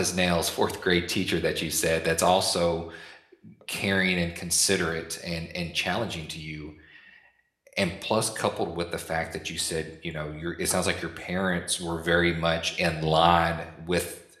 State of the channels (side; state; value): both; identical; correlation 1.00